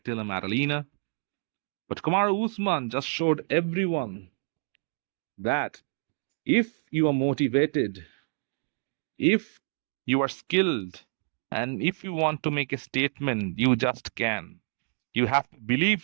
Della Maddalena. But Kamaru Usman just showed everyone that if you are motivated, if you are skilled, and if you want to make a statement, you just can. You have to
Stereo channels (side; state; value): left; silent; 57 dB below the other